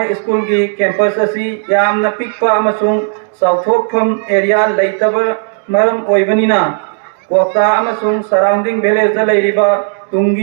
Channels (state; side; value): silent; left; digital silence